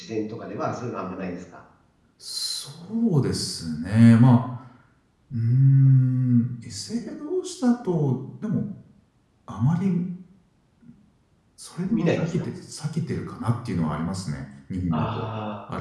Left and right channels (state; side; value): identical; both; correlation 1.00